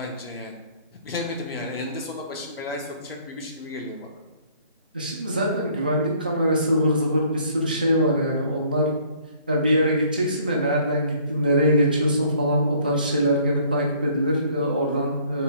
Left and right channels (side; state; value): both; inverted; correlation -0.59